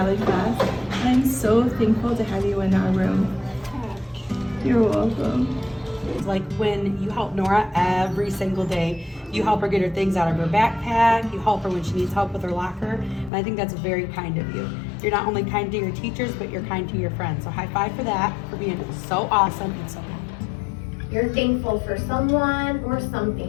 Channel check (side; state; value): right; drops out; at 13.3 s